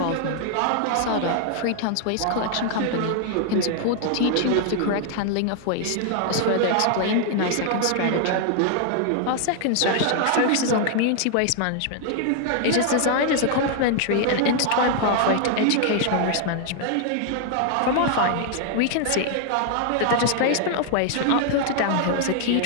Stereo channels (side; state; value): both; different; correlation 0.00